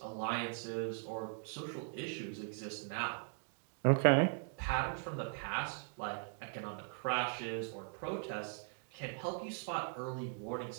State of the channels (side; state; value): left; silent; 51 dB below the other